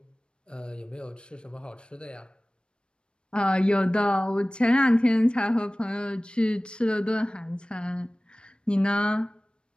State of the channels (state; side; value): late; right; 0.054 ms